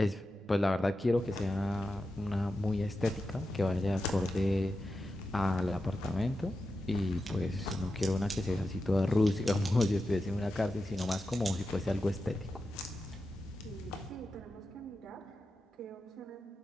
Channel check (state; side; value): normal; both; correlation 0.90